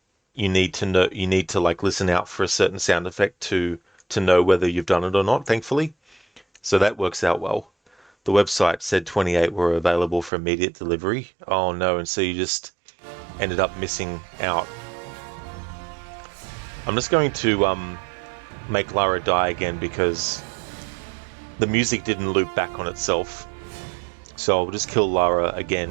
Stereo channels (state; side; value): drops out; left; at 10.3 s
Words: you need to know, you need to like listen out for a certain sound effect to know whether you've done it or not, thankfully. So that works out well. The website said 28 were available for immediate delivery. Oh no, and so you just ended up missing out. I'm just going to make Lara die again because the music didn't loop back on itself. So I'll just kill Lara